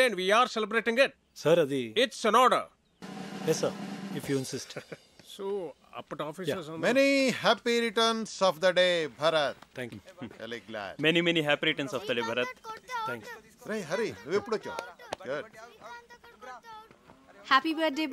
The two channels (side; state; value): both; identical; correlation 1.00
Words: and we're celebrating it. Sir అది it's an order. Yes sir, if you insist. So అప్పటి officers Many happy returns of the day, Bharat. Thank you. Really glad. Many happy returns of the day, Bharat. Thanks. Ray, hurry. నువ్వు ఎప్పుడు వచ్చావు? Good. Happy birthday